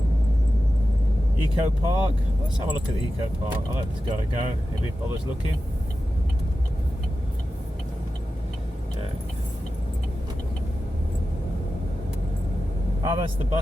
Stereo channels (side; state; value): both; normal; correlation 0.93